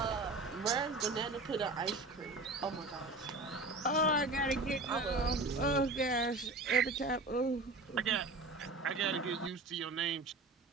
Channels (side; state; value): left; quieter; 3.2 dB